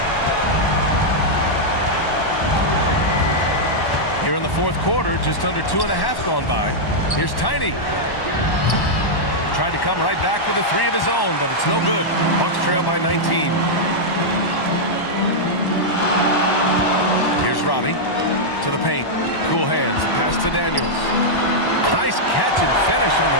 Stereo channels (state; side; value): late; right; 1.1 ms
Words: Here in the fourth quarter, just under 2.5 gone by. Here's Tiny. Tried to come right back with a three of his own, but it's no good. Bucks trail by 19. Here's Robbie to the paint. Cool hands. The pass to Daniels. Nice catch and finish on